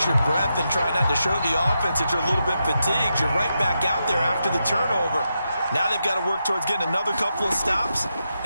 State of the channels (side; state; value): both; inverted; correlation -0.86